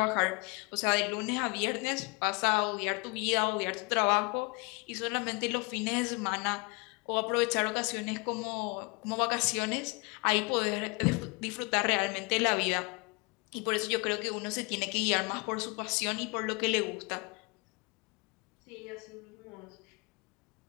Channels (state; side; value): quieter; right; 29.2 dB